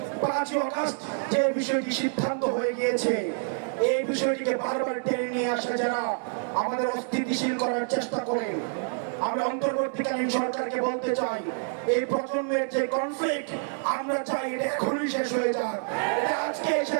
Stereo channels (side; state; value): left; silent; 60 dB below the other